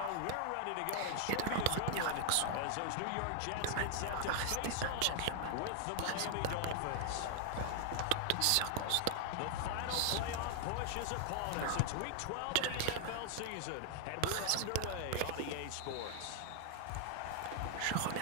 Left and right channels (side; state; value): both; different; correlation 0.00